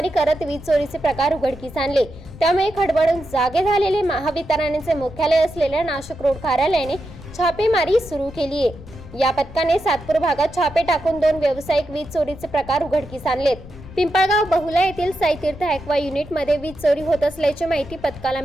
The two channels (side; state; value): left; noise; rumble, 17 dB below the sound